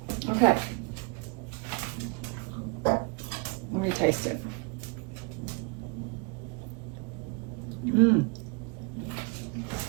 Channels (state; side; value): quieter; left; 32.5 dB